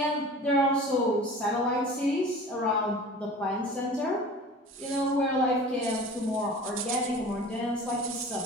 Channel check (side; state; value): both; normal; correlation 0.41